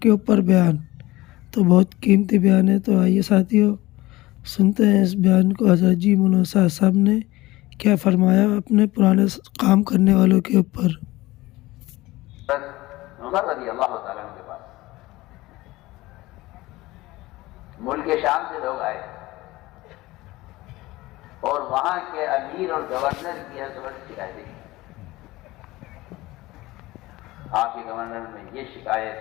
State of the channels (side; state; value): right; quieter; 19.0 dB